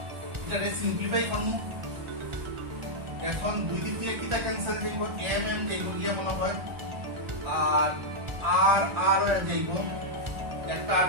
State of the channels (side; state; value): left; late; 1.4 ms